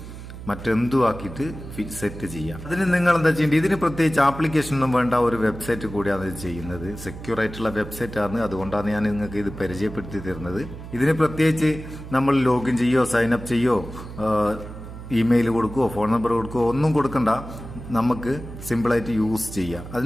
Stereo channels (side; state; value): right; noise; hum, 12 dB below the sound